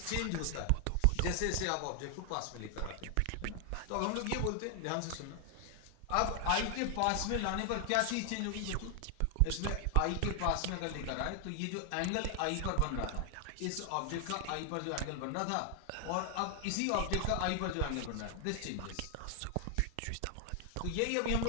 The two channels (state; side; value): different; both; correlation 0.00